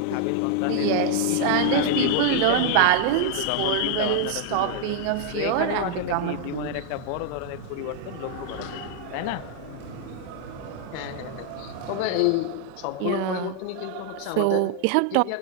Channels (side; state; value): both; different; correlation 0.00